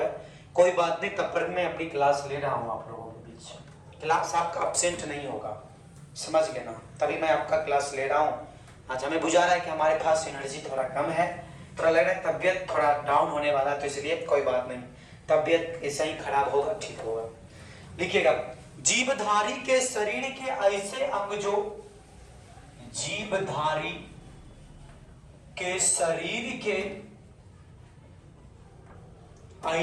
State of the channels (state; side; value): identical; both; correlation 1.00